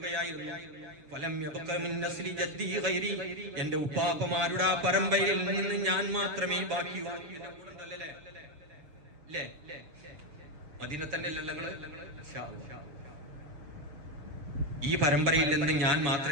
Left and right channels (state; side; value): late; left; 6.7 ms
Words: ഫലം യബ്ഖ മിൻ നസ്ലി ജദ്ദി ഗൈരി, എന്റെ ഉപ്പാപ്പമാരുടെ ആ പരമ്പരയിൽ നിന്ന് ഞാൻ മാത്രമേ ബാക്കിയുള്ളൂ. എന്റെ കൂടെ ഉണ്ടല്ലേ അല്ലേ? മദീന തന്നെ ഈ പരമ്പരയിൽ നിന്ന് ഞാൻ